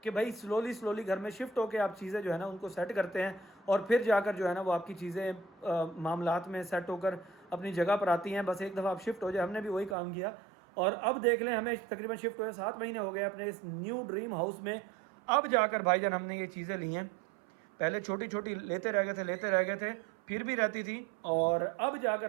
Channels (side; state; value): left; drops out; at 10.0 s